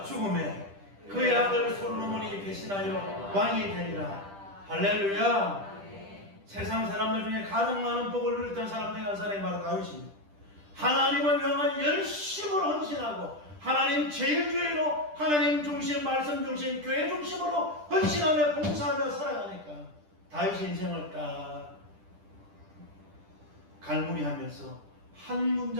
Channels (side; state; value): left; late; 10 ms